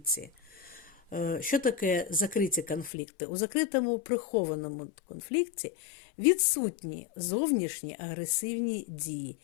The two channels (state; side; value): drops out; right; at 2.9 s